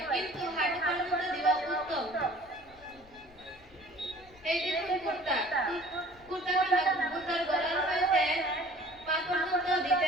কিন্তু হাঁটু পর্যন্ত দেওয়া উত্তম। এই দেখুন কুর্তা। কুর্তা খানা মুরগার গলার হইতে পা পর্যন্ত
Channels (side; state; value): left; noise; rumble, 25 dB below the sound